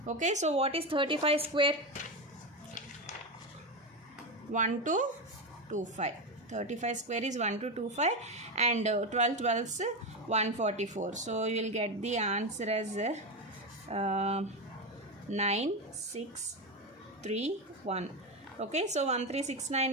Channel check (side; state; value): both; normal; correlation 0.14